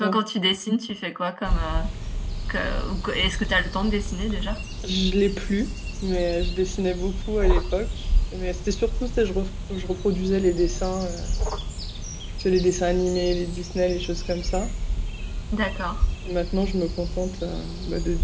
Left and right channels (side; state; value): both; identical; correlation 1.00